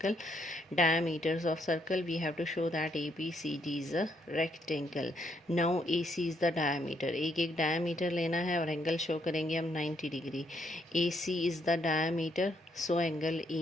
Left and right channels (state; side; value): normal; both; correlation 0.74